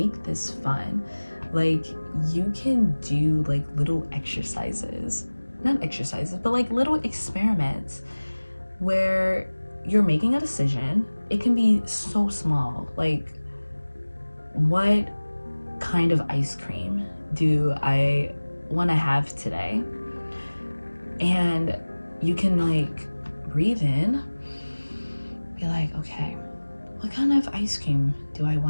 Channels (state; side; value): inverted; both; correlation -1.00